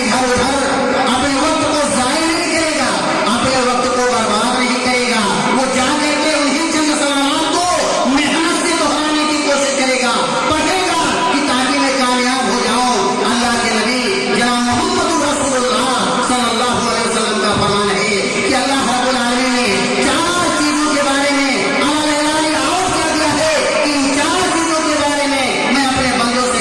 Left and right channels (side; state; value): both; identical; correlation 1.00